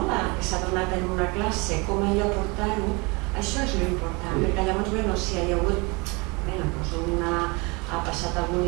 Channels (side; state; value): left; quieter; 27.9 dB